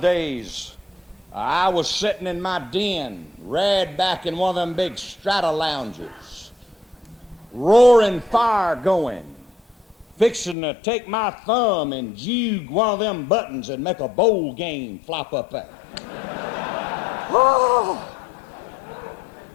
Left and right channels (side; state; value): right; drops out; at 10.6 s